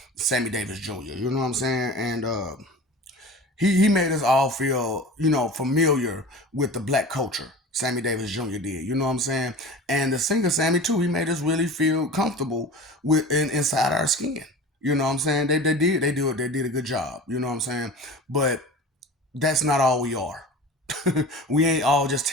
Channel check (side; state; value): both; normal; correlation 0.36